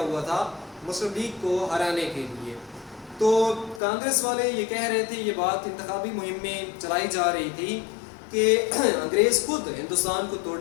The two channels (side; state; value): right; drops out; at 3.8 s